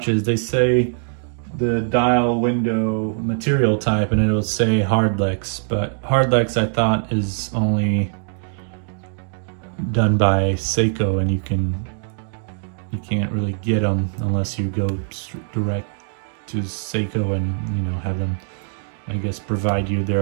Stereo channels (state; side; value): silent; left; digital silence